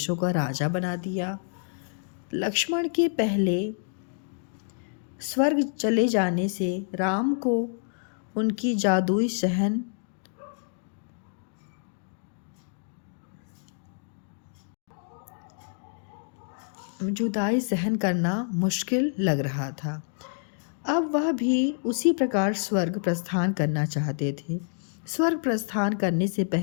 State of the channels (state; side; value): silent; right; digital silence